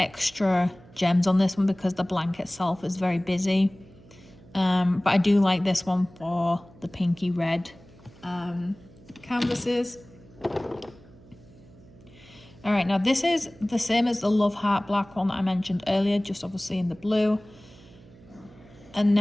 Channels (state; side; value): noise; right; hum, 24 dB below the sound